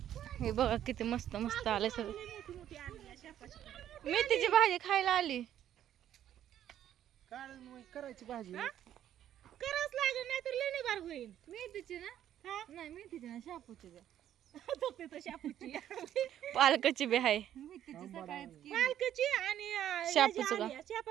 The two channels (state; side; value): quieter; left; 11.1 dB